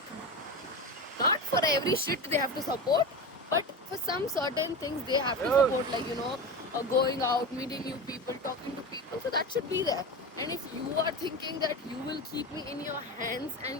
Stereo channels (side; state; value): both; normal; correlation 0.25